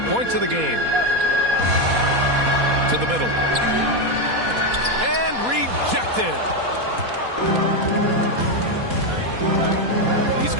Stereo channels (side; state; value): left; late; 4.2 ms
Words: points of the game. To the middle. And rejected. He's